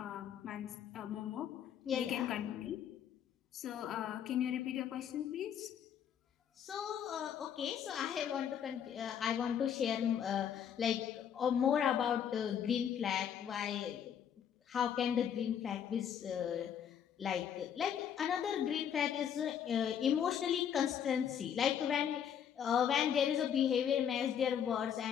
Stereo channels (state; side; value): quieter; right; 8.7 dB